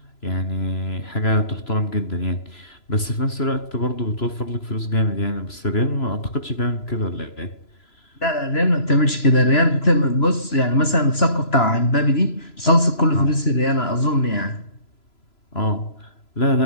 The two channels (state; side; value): late; right; 3.0 ms